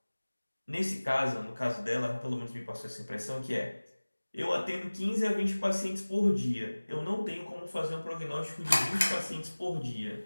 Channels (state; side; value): inverted; both; correlation -1.00